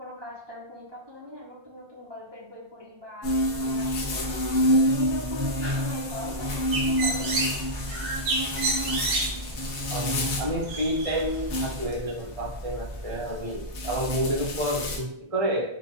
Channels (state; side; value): late; left; 1.3 ms